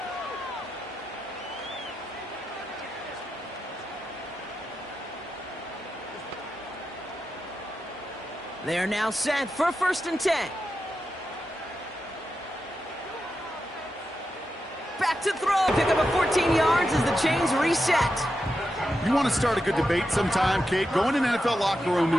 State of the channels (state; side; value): normal; both; correlation 0.88